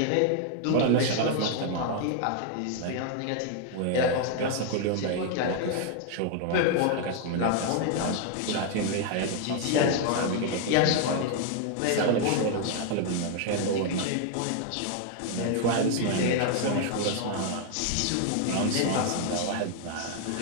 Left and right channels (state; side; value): different; both; correlation 0.00